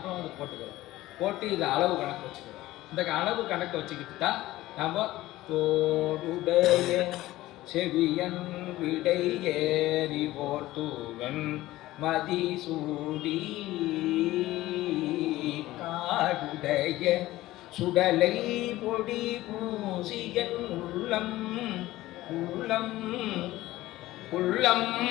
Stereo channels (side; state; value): right; quieter; 16.7 dB